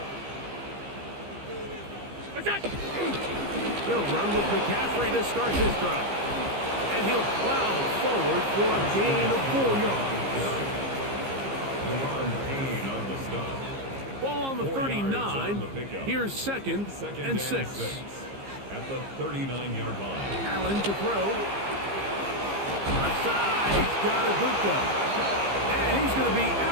He'll run with McCaffrey to start his drive. And he'll plow forward for a gain of 4 yards. On the stop. Ball on the 39. Here's second and 6. At the 39-yard line. Allen to throw. Left side, he's got Ibuka. And he's going to be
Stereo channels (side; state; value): left; late; 15 ms